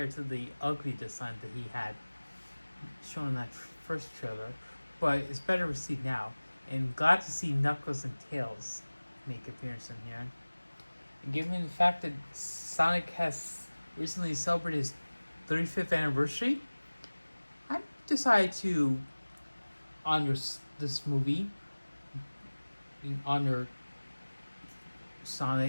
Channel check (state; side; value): inverted; both; correlation -1.00